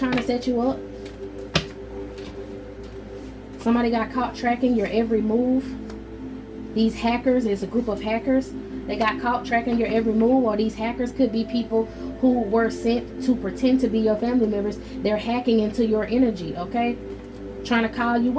to set you up. Somebody got caught tracking your every move. These hackers, it's a group of hackers. They got caught tracking your every move, or these hackers could be people who were sent to pretend to be your family members. They're hacking into your energy. Okay, trying to call you.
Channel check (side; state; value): both; identical; correlation 1.00